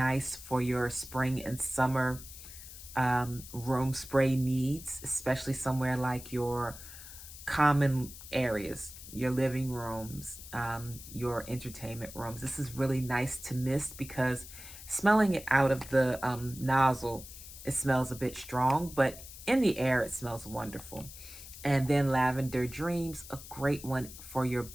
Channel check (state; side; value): noise; left; hiss, 14 dB below the sound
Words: for your spring and summer room spray needs, especially somewhere like your common areas, your living rooms, your entertainment rooms. This is really nice to mist because smelling it out of the nozzle, it smells a bit strong, but in the air, it smells wonderful. And then Lavender Dreams, a great one for your